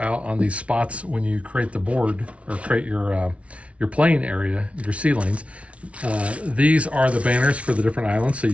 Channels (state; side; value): late; left; 0.063 ms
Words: on these spots when you create the board or create your playing area, your sea lanes. These are the banners for the different islands. So